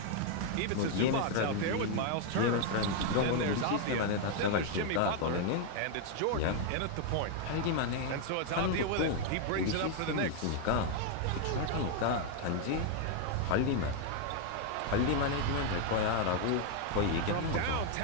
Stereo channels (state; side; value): different; both; correlation 0.01